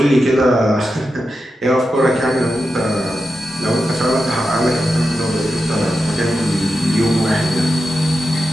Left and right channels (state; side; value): normal; both; correlation 0.90